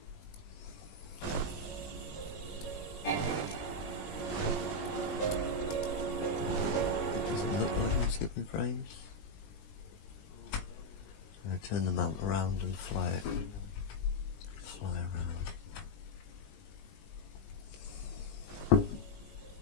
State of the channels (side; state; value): right; late; 20 ms